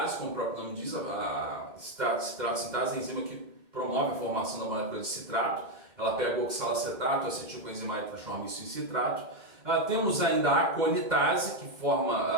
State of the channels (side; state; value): left; late; 2.1 ms